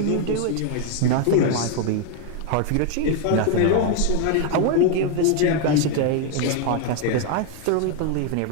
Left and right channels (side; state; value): both; different; correlation 0.00